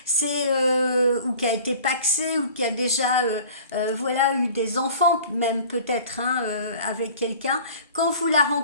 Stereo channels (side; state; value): both; inverted; correlation -0.46